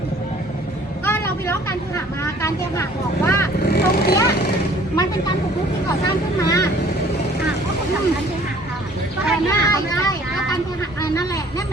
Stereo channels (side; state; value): both; normal; correlation 0.55